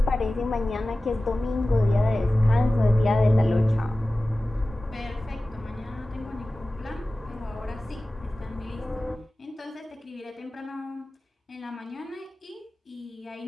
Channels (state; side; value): normal; both; correlation 0.96